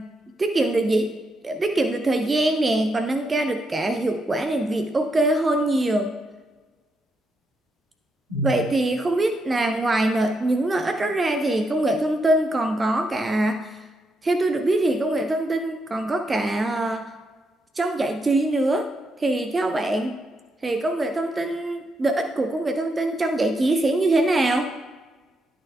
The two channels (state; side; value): normal; both; correlation 0.81